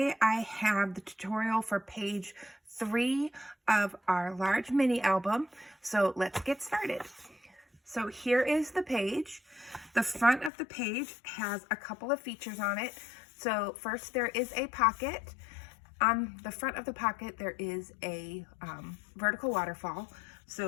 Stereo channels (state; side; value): drops out; right; at 10.5 s